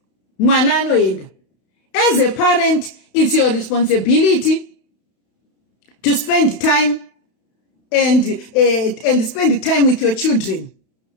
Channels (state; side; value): late; right; 31 ms